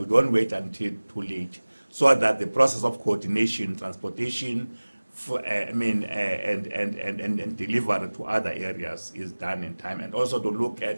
don't wait until too late, so that the process of coordination, transportation, and delivery to other areas is done in time, and also to look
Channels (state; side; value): inverted; both; correlation -1.00